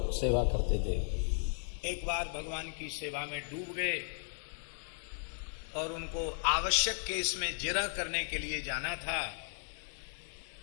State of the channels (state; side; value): silent; right; digital silence